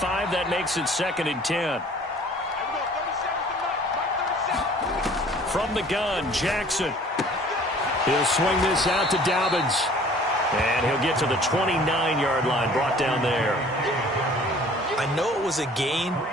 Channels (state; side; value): normal; both; correlation 0.51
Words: That makes it 2nd and 10. From the gun, Jackson. He'll swing this out to Dobbins. And he'll get to the 29-yard line, brought down there. I know it was a gain,